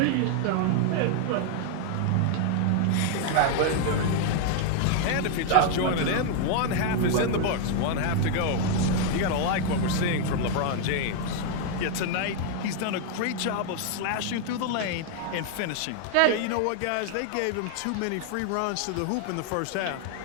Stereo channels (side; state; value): both; different; correlation 0.00